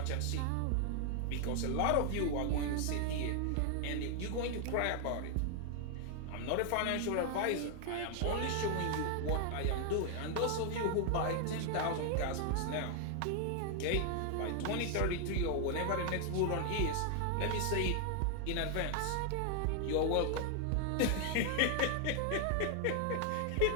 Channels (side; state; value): both; different; correlation 0.00